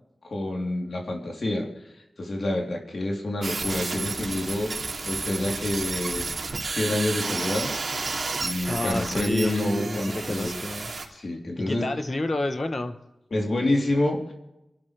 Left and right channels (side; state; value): both; normal; correlation 0.94